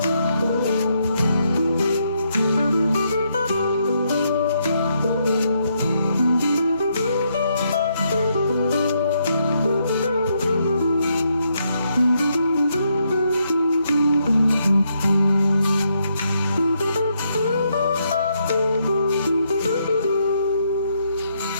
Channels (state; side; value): inverted; both; correlation -0.77